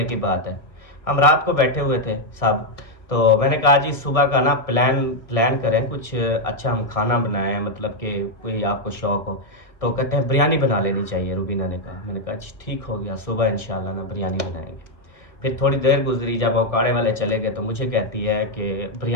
की बात है, हम रात को बैठे हुए थे सब, तो मैंने कहा जी सुबह का ना प्लान करें कुछ अच्छा, हम खाना बनाएं, मतलब कि कोई आपको शौक हो। तो कहते हैं बिरयानी बना लेनी चाहिए, रुबीना ने कहा। मैंने कहा जी ठीक हो गया, सुबह इंशाल्लाह ना बिरयानी बनाएंगे। फिर थोड़ी देर गुजरी, जब औकाड़े वाले चले गए तो मुझे कहती है कि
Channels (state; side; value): late; right; 1.6 ms